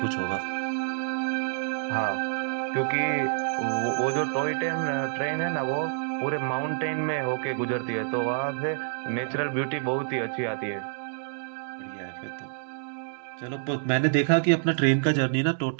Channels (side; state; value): left; silent; digital silence